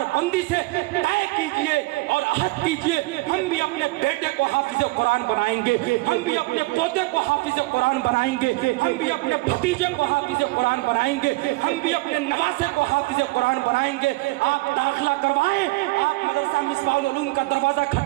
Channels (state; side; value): quieter; left; 22.5 dB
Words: बंदी से तय कीजिए और अहद कीजिए, हम भी अपने बेटे को हाफिज़ कुरान बनाएंगे, हम भी अपने पोते को हाफिज़ कुरान बनाएंगे, हम भी अपने भतीजे को हाफिज़ कुरान बनाएंगे, हम भी अपने नवासे को हाफिज़ कुरान बनाएंगे। आप दाखिला करवाएं, आप मदरसा मिसबाहुल उलूम का दरवाजा